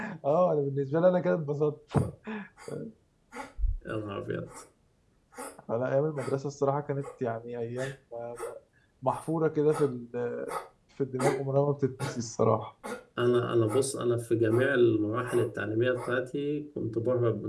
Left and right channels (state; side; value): identical; both; correlation 1.00